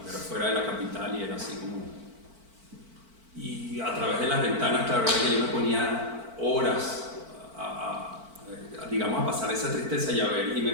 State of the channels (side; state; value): left; late; 4.5 ms